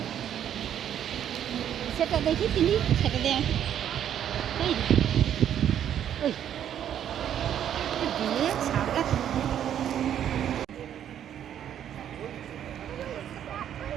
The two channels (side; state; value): left; quieter; 10.0 dB